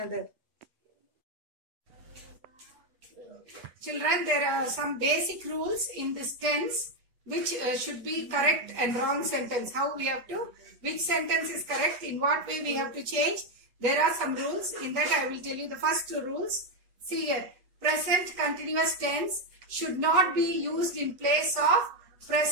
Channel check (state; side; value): late; left; 8.2 ms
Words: Children, there are some basic rules in this tense which should be correct and wrong sentence. How we have to, which sentence is correct, in what way we have to change. There are some rules. In that I will tell you the first two rules. See here, present continuous tense should not be used in place of